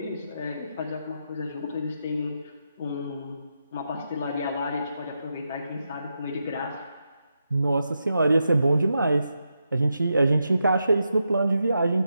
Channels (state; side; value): inverted; both; correlation -0.85